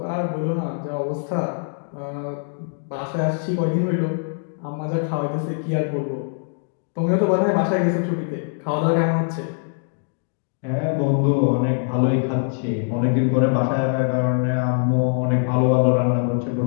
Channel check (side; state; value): right; silent; digital silence